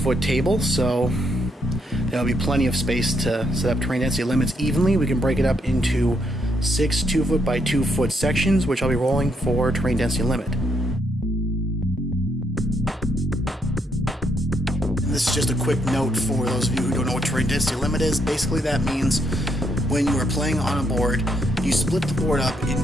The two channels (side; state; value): both; normal; correlation 0.76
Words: table, so there'll be plenty of space to set up terrain density limits evenly. We can break it up into 6 2-foot by 2-foot sections, which I'll be rolling for terrain density limit. And this is just a quick note for those of you who don't know what terrain density limit is. Basically that means when you are playing on a board, you split the board up